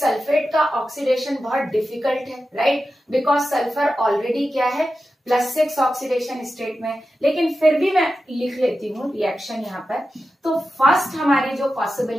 का ऑक्सीडेशन बहुत डिफिकल्ट है, राइट, बिकॉज सल्फर ऑलरेडी क्या है, +6 ऑक्सीडेशन स्टेट में। लेकिन फिर भी मैं लिख लेती हूँ रिएक्शन यहां पर। तो फर्स्ट हमारी जो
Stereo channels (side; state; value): both; normal; correlation 0.92